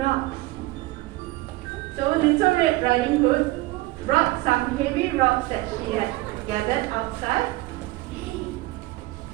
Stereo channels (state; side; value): quieter; left; 19.6 dB